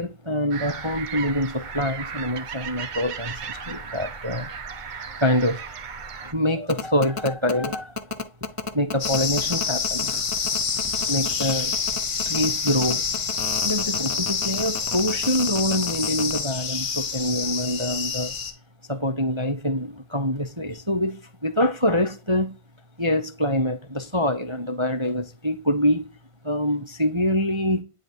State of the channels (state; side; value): late; left; 1.5 ms